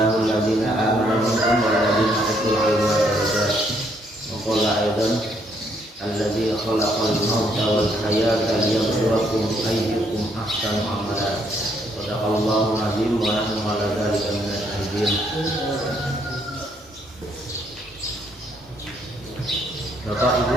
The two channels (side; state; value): both; normal; correlation 0.70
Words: alladhina amanu minkum wal ladzina utul ilma darajat. Wa qala aidan alladzi khalaqal mauta wal hayata liyabluwakum ayyukum ahsanu amala. Sadaqallahu azim wa nahnu ala dzalika minasy syahidin. Bapak